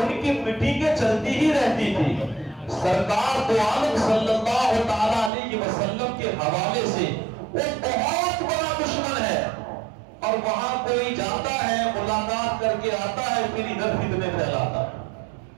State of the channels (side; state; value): left; drops out; at 5.3 s